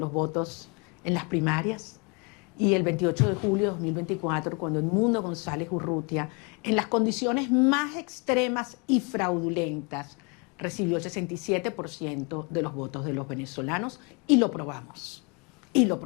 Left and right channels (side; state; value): right; quieter; 32.9 dB